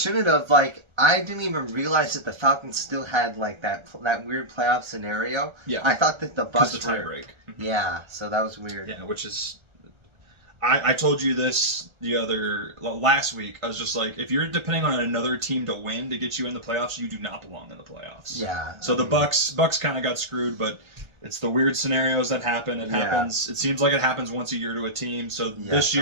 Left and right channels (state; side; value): late; left; 1.3 ms